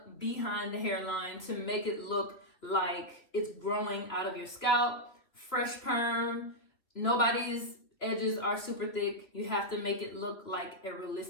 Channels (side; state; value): right; late; 3.3 ms